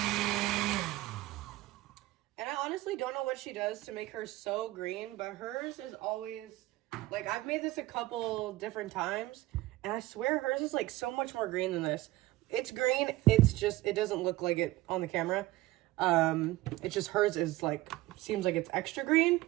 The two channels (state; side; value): quieter; left; 17.9 dB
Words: And I honestly don't know what she does to make her so green, but hers is always, like, I've made this a couple different times, and I swear hers is, like, so much more green than this. It's green, it's just, it doesn't look like it on the camera. It's just hers is, like, seems like it's extra green.